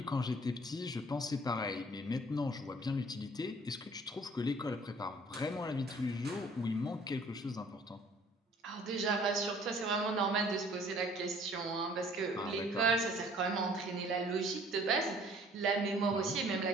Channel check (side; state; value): both; normal; correlation 0.55